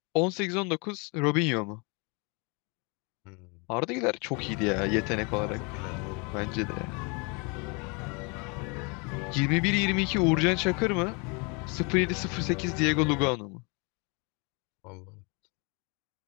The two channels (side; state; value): right; quieter; 31.7 dB